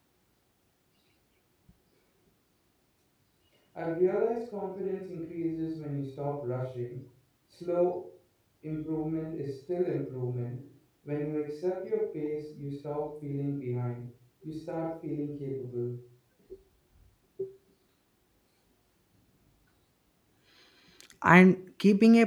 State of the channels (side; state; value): both; identical; correlation 1.00